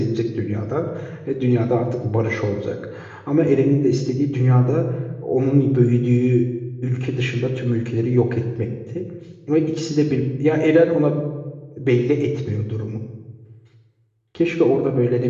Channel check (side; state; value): both; identical; correlation 1.00